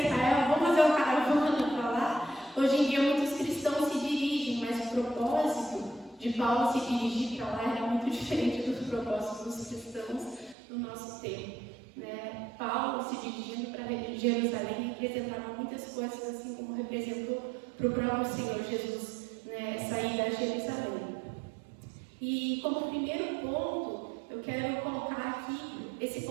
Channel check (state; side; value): drops out; left; at 10.6 s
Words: Israel? Vamos fazer uma caravana para lá? Hoje em dia, muitos cristãos se dirigem, mas o propósito de Paulo se dirigir para lá era muito diferente dos propósitos dos cristãos no nosso tempo. Paulo se dirigindo para Jerusalém representava muitas coisas, assim como representou para o próprio Senhor Jesus, sair da Jerusalém. E como primeiro ponto, eu quero colocar aqui esse